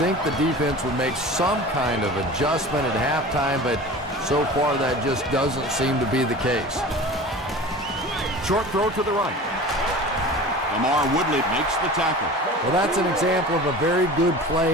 the defense would make some kind of adjustment at halftime, but so far that just doesn't seem to be the case. Short throw to the right. Lamar Woodley makes the tackle. Well, that's an example of a very good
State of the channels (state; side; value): normal; both; correlation 0.37